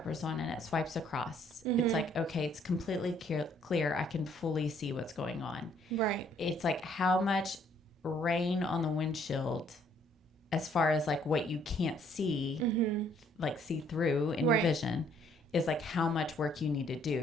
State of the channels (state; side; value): normal; both; correlation 0.64